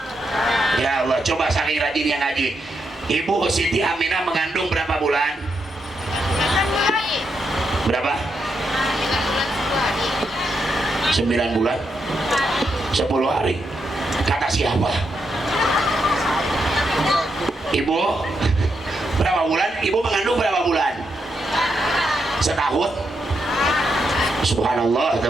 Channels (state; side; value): normal; both; correlation 0.82